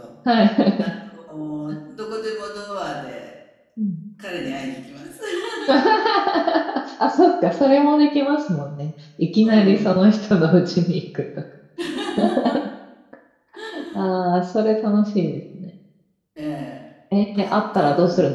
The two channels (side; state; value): both; identical; correlation 1.00